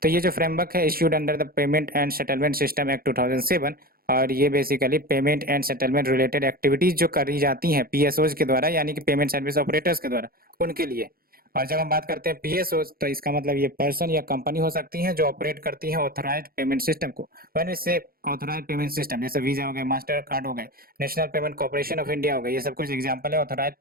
तो ये जो फ्रेमवर्क है issued under the payment and settlement system act 2007 और ये basically payment and settlement related activities जो करी जाती हैं पीएसओज के द्वारा यानी कि पेमेंट सर्विस ऑपरेटर्स के द्वारा उनके लिए। और जब हम बात करते हैं पीएसओज तो इसका मतलब ये पर्सन या कंपनी हो सकती है जो ऑपरेट करती है ऑथराइज्ड पेमेंट सिस्टम को। व्हेन वी से ऑथराइज्ड पेमेंट सिस्टम जैसे वीजा हो गए, मास्टर कार्ड हो गए, national payment corporation of India हो गए, ये सब कुछ एग्जांपल है ऑथराइज्ड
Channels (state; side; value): late; left; 0.43 ms